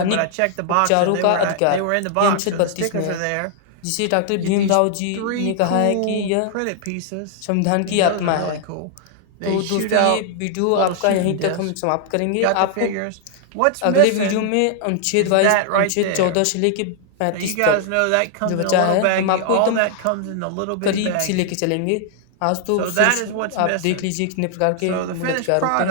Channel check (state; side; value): different; both; correlation 0.00